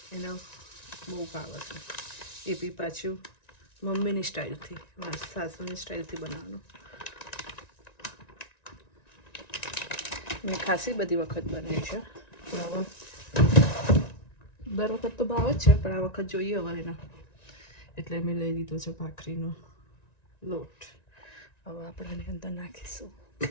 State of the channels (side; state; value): right; late; 1.9 ms